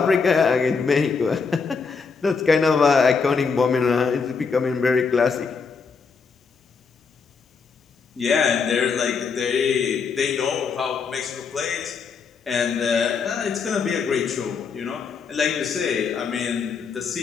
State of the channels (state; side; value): quieter; right; 5.3 dB